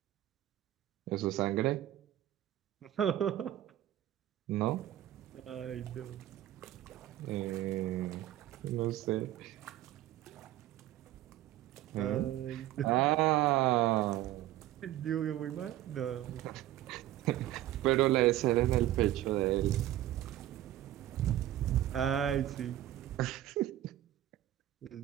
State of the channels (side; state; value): left; quieter; 13.8 dB